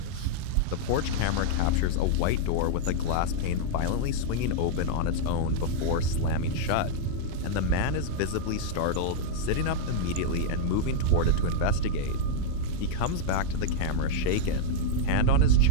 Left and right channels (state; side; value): different; both; correlation -0.01